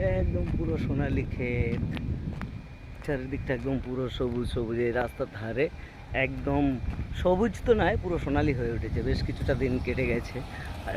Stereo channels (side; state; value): both; identical; correlation 1.00